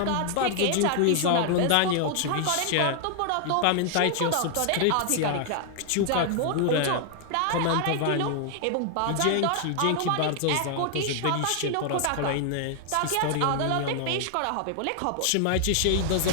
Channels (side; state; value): both; different; correlation 0.00